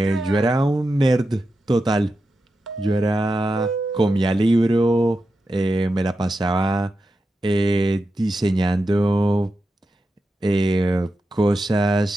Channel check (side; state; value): both; normal; correlation 0.90